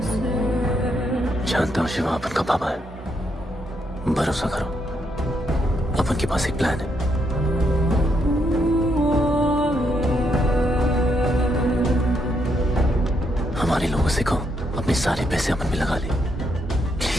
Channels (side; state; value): both; normal; correlation 0.77